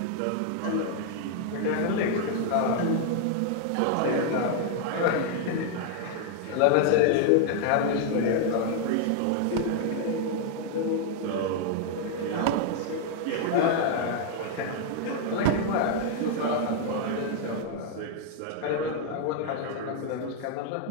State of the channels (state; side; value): different; both; correlation 0.00